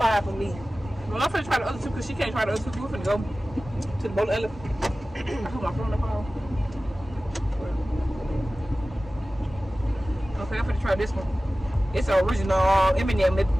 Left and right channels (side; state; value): both; normal; correlation 0.96